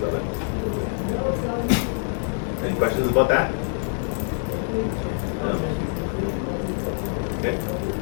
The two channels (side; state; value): right; silent; 61 dB below the other